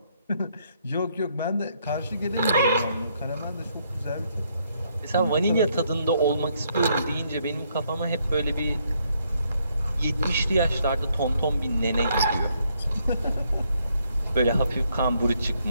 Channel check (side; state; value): both; inverted; correlation -0.72